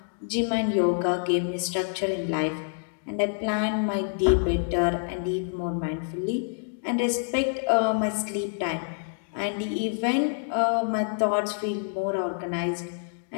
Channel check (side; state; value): right; silent; digital silence